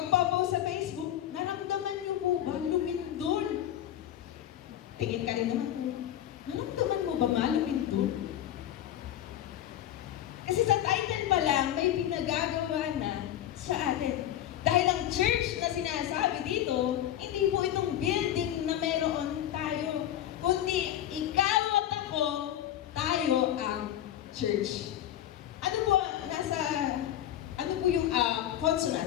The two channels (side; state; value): right; quieter; 11.8 dB